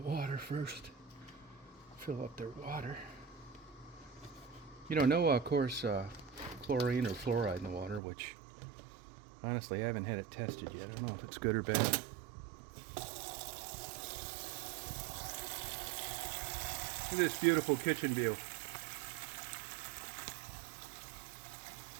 water first. Fill up their water. You know, no, of course, chlorine or fluoride in the water, which honestly I haven't had it tested yet. I don't know if it's good or bad. Look at this beautiful kitchen view.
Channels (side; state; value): left; drops out; at 8.0 s